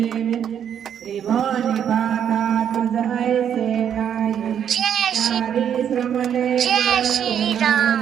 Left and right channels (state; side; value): quieter; left; 8.9 dB